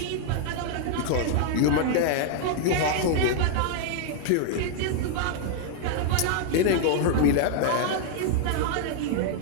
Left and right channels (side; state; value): both; different; correlation 0.00